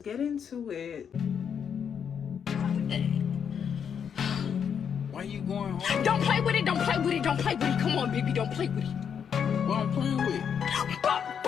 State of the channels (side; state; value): right; quieter; 7.6 dB